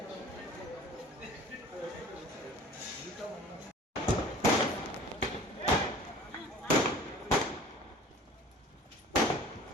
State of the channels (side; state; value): both; normal; correlation 0.45